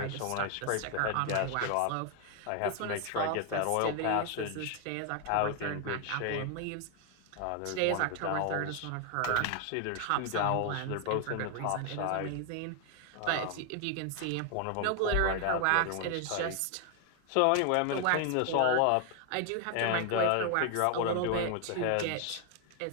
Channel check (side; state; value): both; different; correlation 0.00